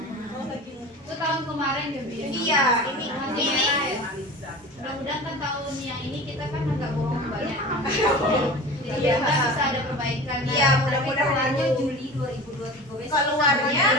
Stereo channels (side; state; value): both; normal; correlation 0.35